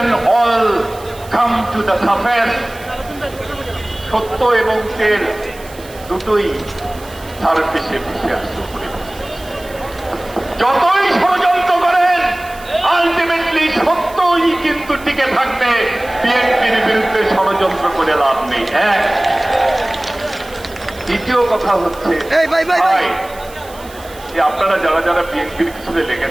and all come to the surface. সত্য এবং তেল দুটোই সারফেসে ভেসে আসতে পারে। যতই ষড়যন্ত্র করেন, আলটিমেটলি সত্যই কিন্তু টিকে থাকবে। বিএনপির বিরুদ্ধে ষড়যন্ত্র করে লাভ নেই। দ্বিতীয় কথা হচ্ছে, আপনারা যারা যারা বিএনপির পিছনে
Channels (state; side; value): noise; right; hiss, 20 dB below the sound